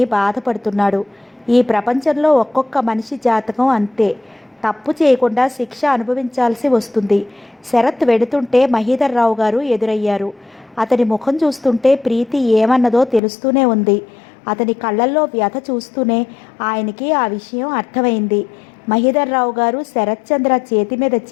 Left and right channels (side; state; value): right; drops out; at 13.2 s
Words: బాధపడుతున్నాడు. ఈ ప్రపంచంలో ఒక్కొక్క మనిషి జాతకం అంతే. తప్పు చేయకుండా శిక్ష అనుభవించాల్సి వస్తుంది. శరత్ వెడుతుంటే మహీధర్రావు గారు ఎదురయ్యారు. అతని ముఖం చూస్తుంటే ప్రీతి ఏమన్నదో తెలుస్తూనే ఉంది. అతని కళ్ళల్లో వ్యధ చూస్తూనే ఆయనకి ఆ విషయం అర్థమైంది. మహీధర్రావు గారు శరత్చంద్ర చేతి మీద